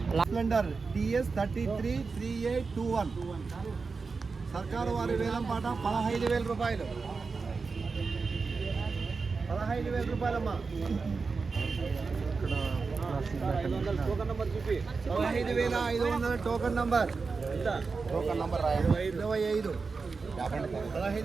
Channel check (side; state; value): left; quieter; 4.6 dB